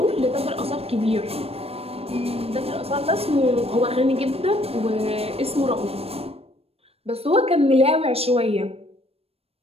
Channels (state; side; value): late; left; 0.28 ms